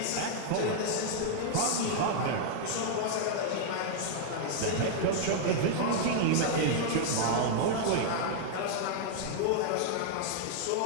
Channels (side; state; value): both; different; correlation -0.01